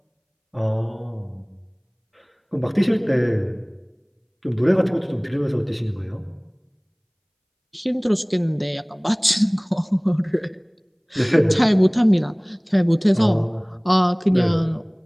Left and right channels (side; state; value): both; identical; correlation 1.00